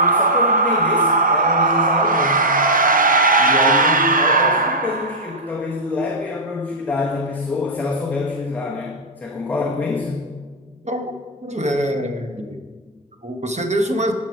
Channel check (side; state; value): both; normal; correlation -0.07